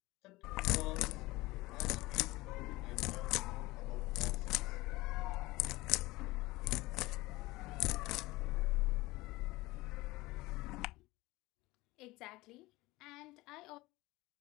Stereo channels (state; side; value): quieter; right; 20.4 dB